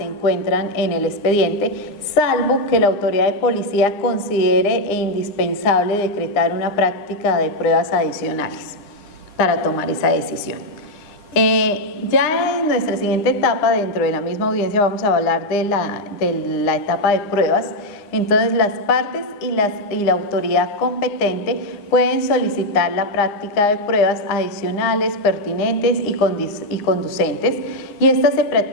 encuentran en el expediente, salvo que la autoridad de policía considere indispensable decretar una práctica de pruebas adicionales para tomar esa decisión. Ya en nuestra siguiente etapa, dentro de la misma audiencia, vamos a hablar de la etapa de pruebas. Entonces, las partes y la autoridad competente pueden solicitar la práctica de pruebas adicionales, pertinentes y conducentes, y estas se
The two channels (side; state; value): right; late; 9.8 ms